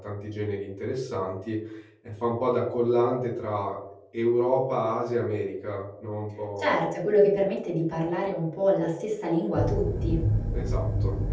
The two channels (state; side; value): identical; both; correlation 1.00